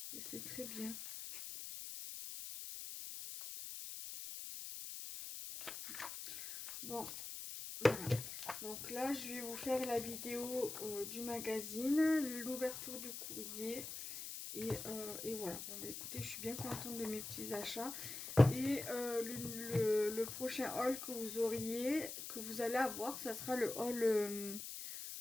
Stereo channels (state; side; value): noise; left; hiss, 7 dB below the sound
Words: Et c'est très bien. Bon, voilà. Donc là, je vais vous faire la vidéo du magazine, l'ouverture du courrier. Et voilà. Bon, bah, écoutez, je suis bien contente de mes petits achats. Et le prochain haul que vous allez avoir, ça sera le haul